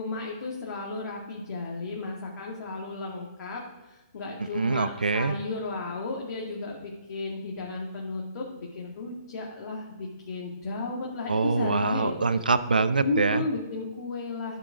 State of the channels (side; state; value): both; inverted; correlation -0.67